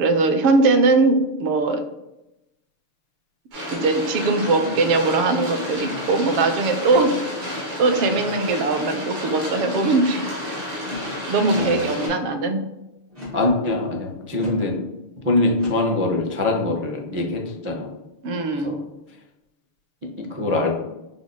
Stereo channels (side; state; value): left; late; 6.6 ms